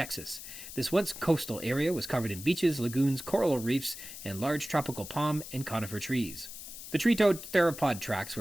This once coastal area was covered in beaches, lagoons, coral reefs, and large tropical palm and conifer trees. The tree-toed theropod tracks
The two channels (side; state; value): left; noise; hiss, 12 dB below the sound